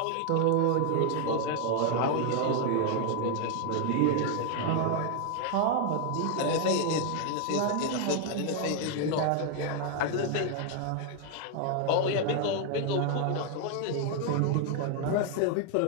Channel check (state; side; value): different; both; correlation 0.01